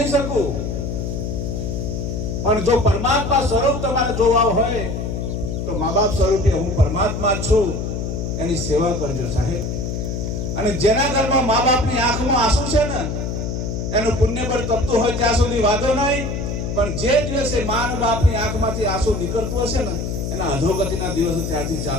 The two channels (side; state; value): left; noise; hum, 3 dB below the sound